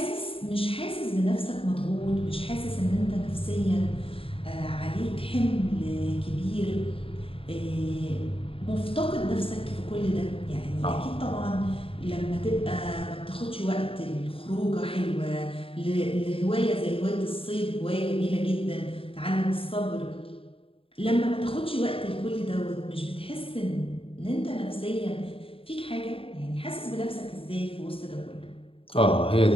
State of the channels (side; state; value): right; late; 0.27 ms